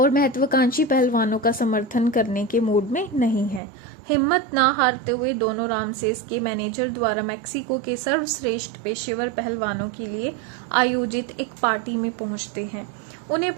महत्वाकांक्षी पहलवानों का समर्थन करने के मूड में नहीं है। हिम्मत ना हारते हुए दोनों रामसेस के मैनेजर द्वारा मैक्सिको के सर्वश्रेष्ठ पेशेवर पहलवानों के लिए आयोजित एक पार्टी में पहुंचते हैं। उन्हें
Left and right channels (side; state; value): left; drops out; at 3.6 s